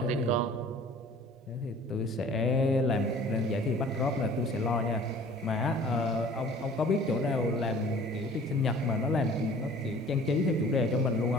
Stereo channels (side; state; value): both; normal; correlation 0.49